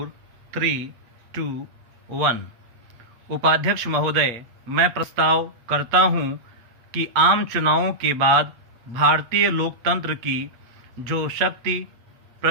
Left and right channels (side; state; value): left; late; 8.4 ms